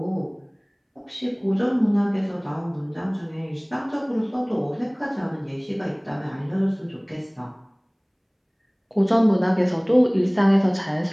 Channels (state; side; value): identical; both; correlation 1.00